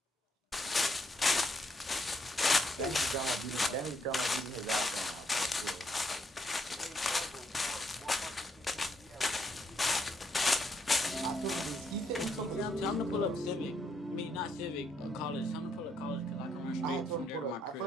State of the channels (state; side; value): normal; both; correlation 0.75